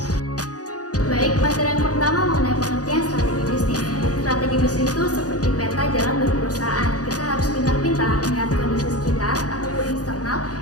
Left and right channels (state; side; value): late; right; 0.67 ms